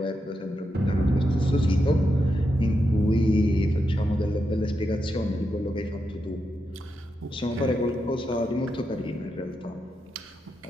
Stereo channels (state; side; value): normal; both; correlation 0.85